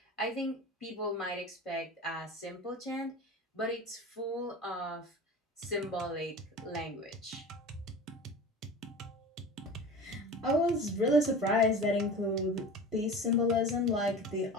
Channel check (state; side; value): normal; both; correlation 0.35